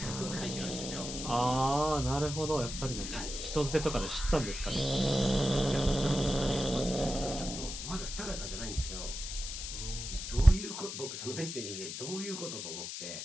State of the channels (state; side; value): noise; left; hiss, 7 dB below the sound